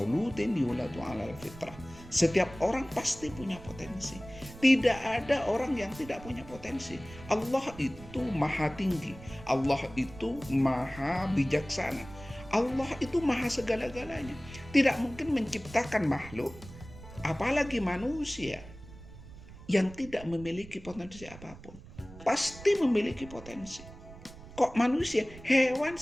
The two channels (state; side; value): noise; right; rumble, 17 dB below the sound